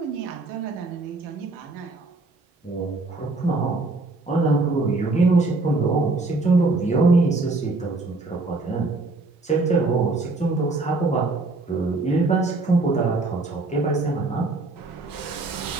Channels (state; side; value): quieter; left; 3.3 dB